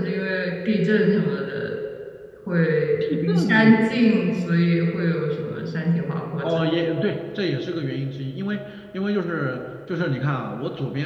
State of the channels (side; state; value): both; identical; correlation 1.00